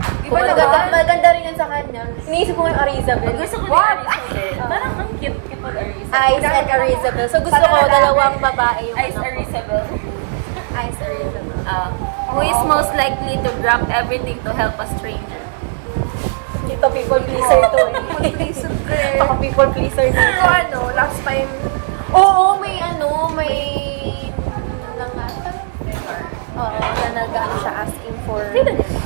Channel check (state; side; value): silent; left; digital silence